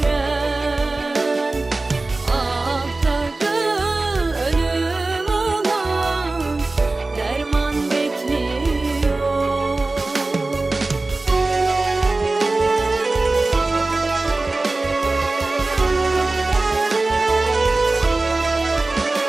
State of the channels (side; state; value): left; quieter; 3.2 dB